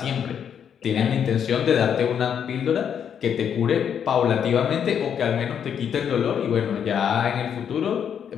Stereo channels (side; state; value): right; quieter; 8.2 dB